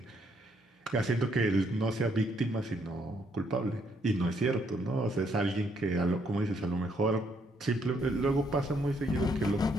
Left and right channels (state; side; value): normal; both; correlation 0.71